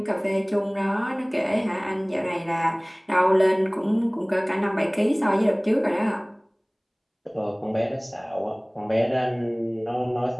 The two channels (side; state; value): both; identical; correlation 1.00